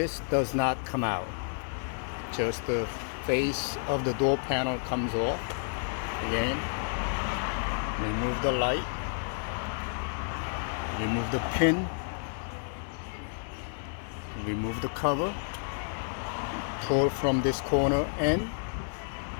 does not come out. Just the face of the door panel comes off. Again, remove the light, remove the pin, remove the cover, pull from this corner and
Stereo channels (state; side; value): silent; right; digital silence